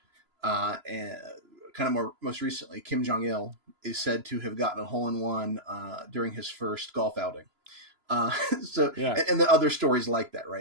and kind of most recently, Kim Jong-il is said to have gotten a hole-in-one during his first golf outing. And the other stories like that,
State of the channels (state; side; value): late; left; 3.0 ms